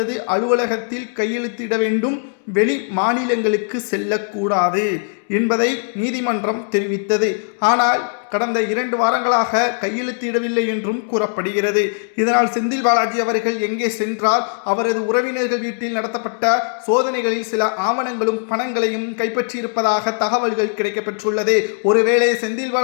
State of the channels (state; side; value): silent; right; 66 dB below the other